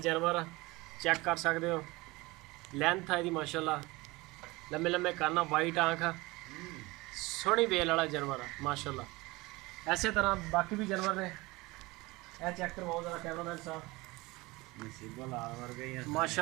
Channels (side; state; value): left; quieter; 22.3 dB